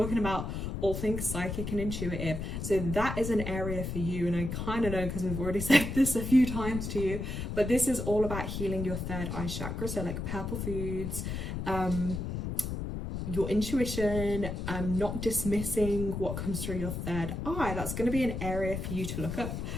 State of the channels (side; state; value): left; noise; rumble, 4 dB below the sound